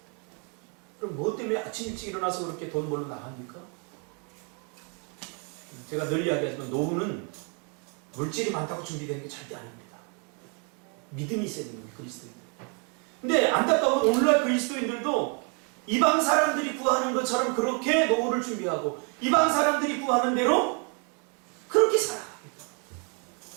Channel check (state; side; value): quieter; left; 37.2 dB